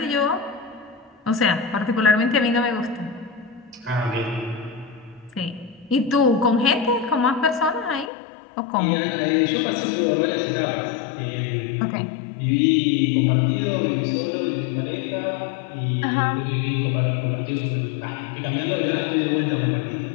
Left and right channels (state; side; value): drops out; right; at 8.1 s